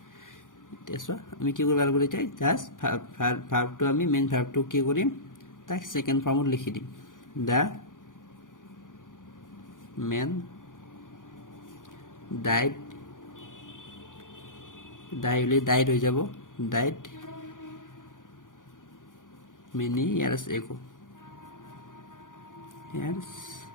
তেছো আমি কি কৰিব লাগিব এতিয়া জাস্ট verb টো আমি মেইন verb টো কি কৰিম তাক সেকেন্ড ফর্মত লিখি দিম the man died died হৈ যাব died many years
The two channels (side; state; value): right; late; 0.88 ms